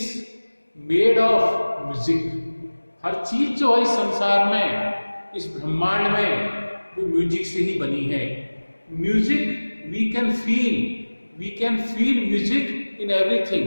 made of music. हर चीज जो है इस संसार में, इस ब्रह्मांड में, वो म्यूजिक से ही बनी है। Music we can feel music in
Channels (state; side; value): inverted; both; correlation -1.00